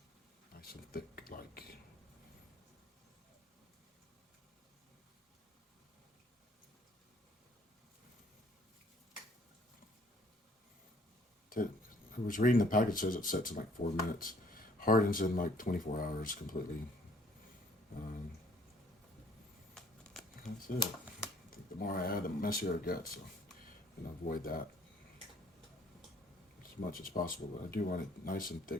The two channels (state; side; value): normal; both; correlation 0.60